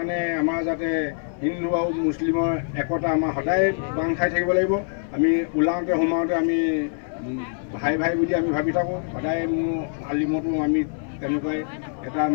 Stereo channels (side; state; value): right; silent; digital silence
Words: আমাৰ যাতে হিন্দু আৰু মুছলিমৰ একতা আমাৰ সদায় বান্ধ খাই থাকিব লাগিব। আমি ওলাওঁতে সোমাওঁতে আমি ভাই ভাই বুলি আমি ভাবি থাকোঁ। সদায় মোৰ আলিমতো আমি তেনেকুৱাই এটা